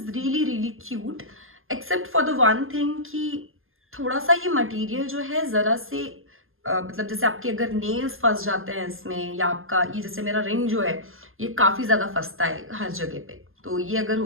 really cute, except for the one thing कि थोड़ा सा ये material जो है जरा से मतलब जैसे आपके अगर नेल्स फंस जाते हैं इसमें, या आपका ये जैसे मेरा रिंग जो है ये काफी ज्यादा फंसता है हर जगह पे, तो ये अगर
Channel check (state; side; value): late; left; 0.60 ms